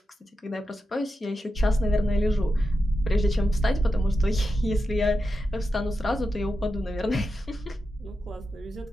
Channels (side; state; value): both; normal; correlation 0.89